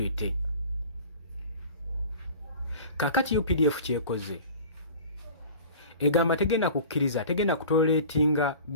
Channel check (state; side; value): inverted; both; correlation -0.41